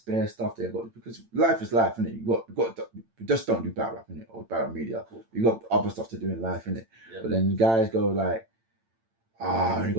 stuff they got, because life is life, innit? You just don't do battle rap, innit? Or battle media. Cool. You got other stuff to do in life, innit? Yeah. But then guys go like, I only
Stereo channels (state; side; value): late; left; 8.9 ms